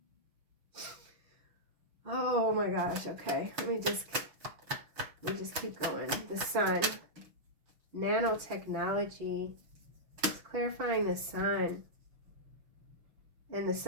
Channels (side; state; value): left; late; 6.4 ms